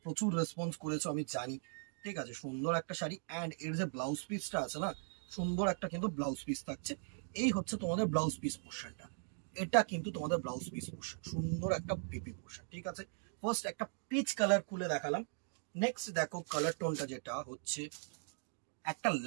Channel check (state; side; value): silent; left; 52 dB below the other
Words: প্রচুর রেসপন্স করেছো আমি জানি। ঠিক আছে, সুন্দর একটা শাড়ি, অ্যান্ড এর যে ব্লাউজ পিসটা আছে না, সুন্দর একটা কিন্তু ব্লাউজ পিস থাকছে। এই হচ্ছে তোমাদের ব্লাউজ পিস পোর্শনটা, এটা কিন্তু তোমাদের ব্লাউজ পিস পোর্শন, সুন্দর একটা পিপি পোর্শন। ঠিক আছে, ফার্স্ট একটা পিচ কালার খুলে দেখালাম। নেক্সট দেখো কালার টোনটা যেটা হচ্ছে একটা